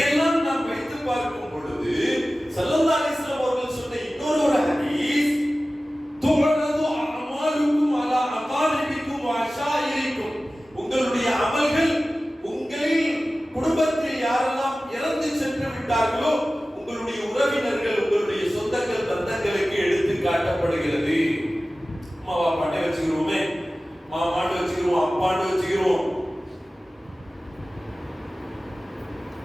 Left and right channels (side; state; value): both; normal; correlation 0.96